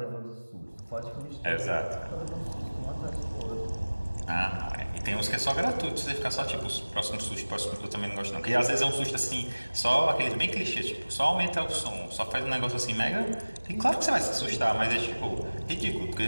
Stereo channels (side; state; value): both; inverted; correlation -1.00